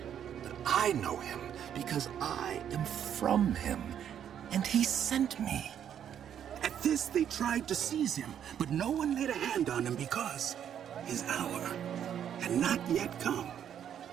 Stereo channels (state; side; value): quieter; left; 9.3 dB